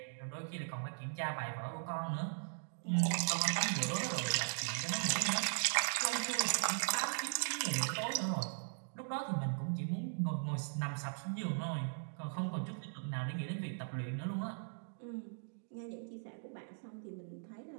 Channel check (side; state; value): left; silent; digital silence